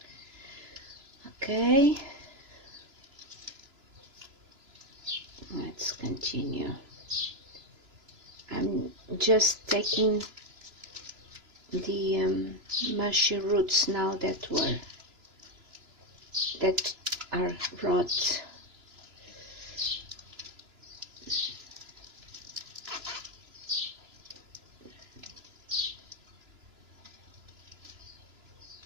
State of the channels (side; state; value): left; late; 3.0 ms